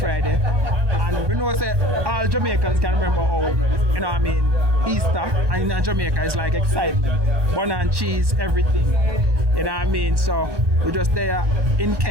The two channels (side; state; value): left; late; 1.1 ms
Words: And we know that all Jamaicans can remember how, you know what I mean, Easter and in Jamaica is like excitement. Bun and cheese, everything. You know what I mean? So we're just there in